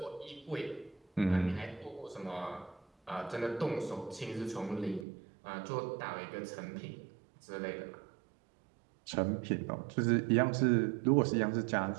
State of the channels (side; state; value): left; drops out; at 5.1 s